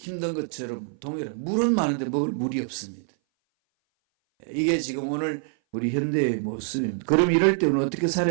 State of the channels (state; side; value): silent; left; 58 dB below the other